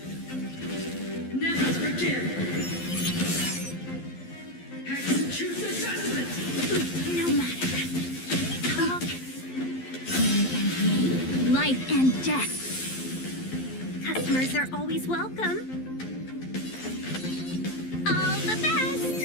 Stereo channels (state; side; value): late; right; 12 ms